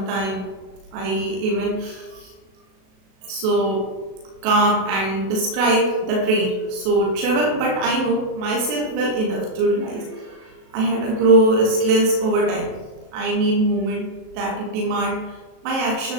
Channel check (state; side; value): late; left; 37 ms